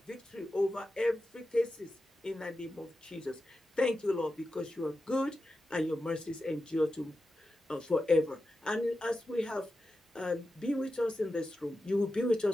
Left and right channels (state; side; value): normal; both; correlation 0.91